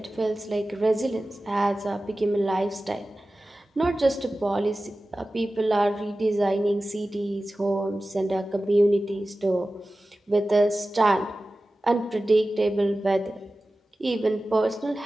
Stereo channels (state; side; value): normal; both; correlation 0.95